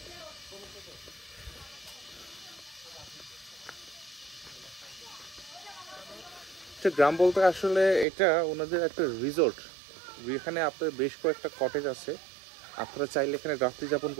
গ্রাম বলতে আসলে এটা ওনাদের একটা রিসোর্ট, এখানে আপনার বেশ কয়েকটা কটেজ আছে, আপনারা চাইলে এখানে রাত্রি যাপন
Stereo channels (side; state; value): left; drops out; at 8.1 s